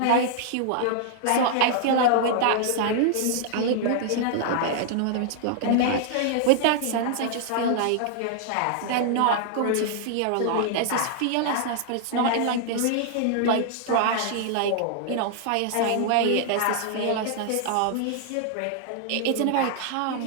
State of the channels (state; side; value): different; both; correlation -0.01